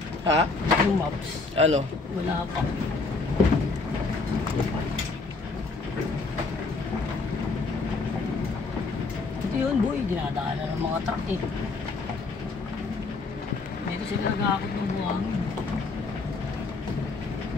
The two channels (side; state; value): right; quieter; 3.9 dB